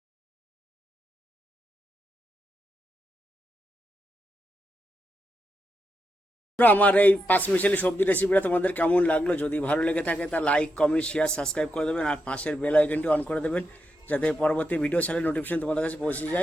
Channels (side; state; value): both; normal; correlation 0.84